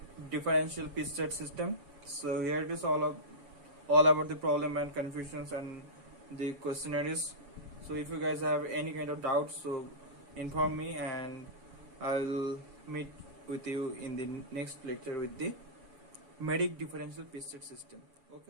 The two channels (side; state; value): left; late; 7.1 ms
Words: differential piece rate system. So here it is all about the problem and confusions and the questionnaires. So if you guys have any kind of doubts, so inform me and I'll meet with you in the next lecture with the Medic differential piece rate system.